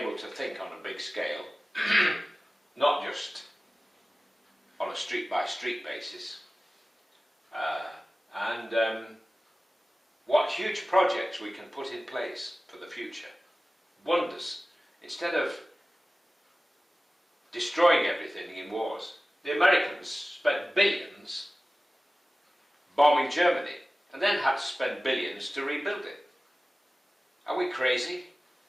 to think on a big scale, not just on a street-by-street basis. What huge projects we can put in place for the future. Wonders. Instead of destroying everything in wars. The Americans spent billions bombing Germany and then had to spend billions to rebuild it. Are we crazy?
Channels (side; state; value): both; normal; correlation 0.97